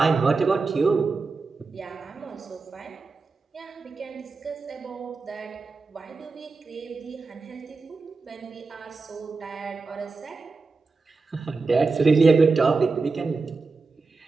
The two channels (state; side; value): quieter; left; 4.1 dB